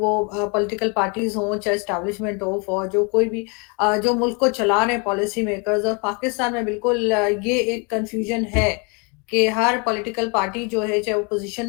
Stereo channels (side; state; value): right; quieter; 33.3 dB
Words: पॉलिटिकल पार्टीज़ हों, चाहे एस्टेब्लिशमेंट हो, फौज हो, कोई भी जो मुल्क को चला रहे हैं पॉलिसी मेकर्स। और पाकिस्तान में बिल्कुल ये एक कन्फ्यूजन है कि हर पॉलिटिकल पार्टी जो है, चाहे ओपोज़िशन